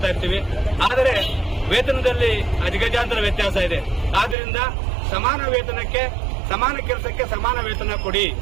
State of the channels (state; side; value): drops out; left; at 4.4 s